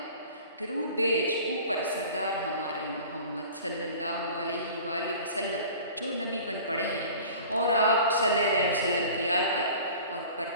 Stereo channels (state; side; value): inverted; both; correlation -0.43